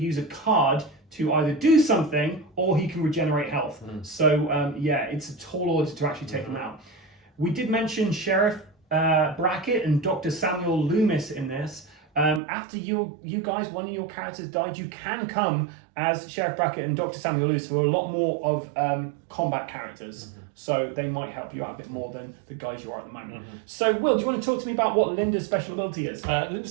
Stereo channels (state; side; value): drops out; left; at 12.4 s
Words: a card to either do something or he can regenerate health. So, yeah, it's a tall order to actually take him out. We did mention Sheriff Brackett and Dr. Samuel Loomis in this. After you guys, one of your characters died, you can come as Sheriff Brackett and Dr. Samuel Loomis, who are a lot more of combat characters. So they might help you out a bit more than the guys you are at the moment. So, Will, do you want to talk to me about what Linda's special ability is?